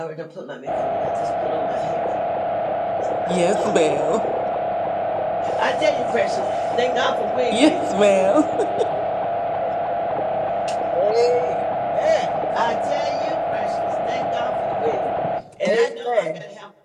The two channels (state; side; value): identical; both; correlation 1.00